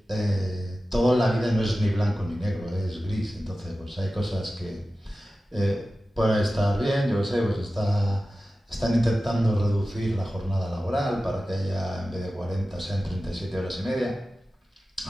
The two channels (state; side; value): normal; both; correlation 0.95